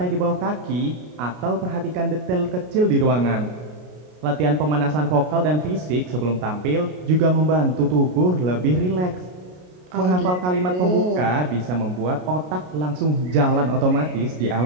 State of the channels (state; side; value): late; left; 33 ms